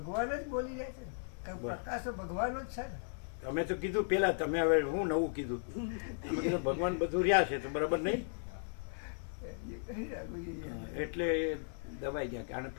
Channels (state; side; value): silent; right; digital silence